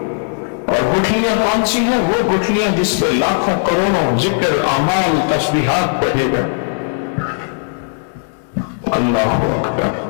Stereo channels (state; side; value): silent; right; digital silence